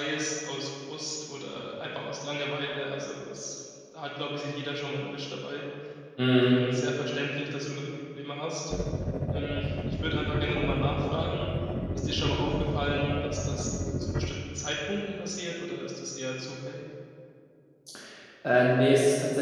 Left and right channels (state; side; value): identical; both; correlation 1.00